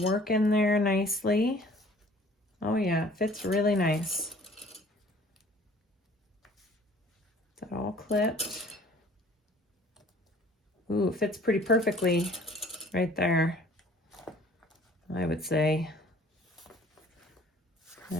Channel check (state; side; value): normal; both; correlation 0.53